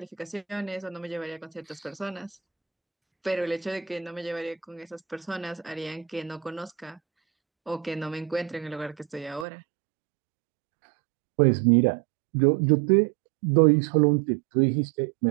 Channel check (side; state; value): left; drops out; at 9.5 s